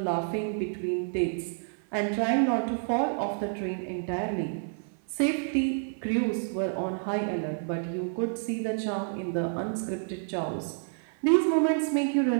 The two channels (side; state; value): left; silent; 59 dB below the other